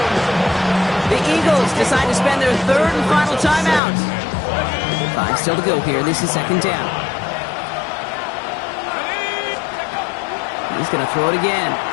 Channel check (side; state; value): right; drops out; at 3.8 s